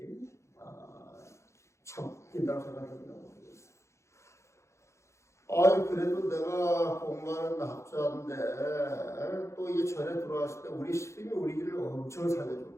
참 웃긴다고 생각합니다. 그래도 내가 공부하는 학자인데 또 이 절에 들어왔을 때 우리 스님이 우리 길을 엄청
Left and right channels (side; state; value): right; late; 0.14 ms